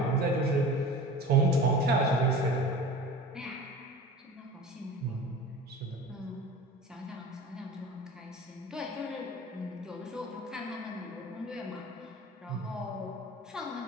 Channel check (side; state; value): both; normal; correlation 0.37